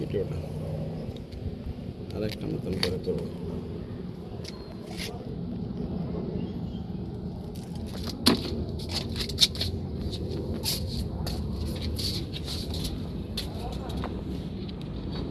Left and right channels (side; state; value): both; identical; correlation 1.00